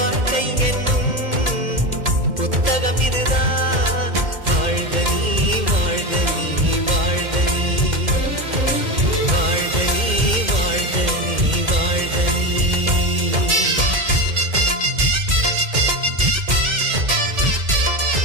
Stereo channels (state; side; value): late; left; 2.1 ms